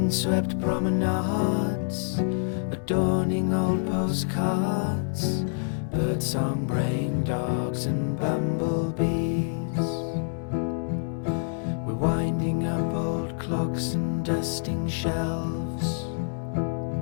promenades, adorning old postcards, birdsong brain dogs and bumblebees. We're winding up old clocks and dusting shelves.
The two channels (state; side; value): silent; right; digital silence